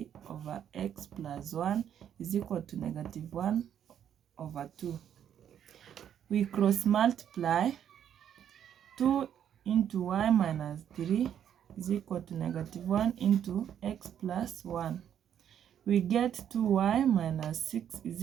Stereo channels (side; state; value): left; quieter; 9.5 dB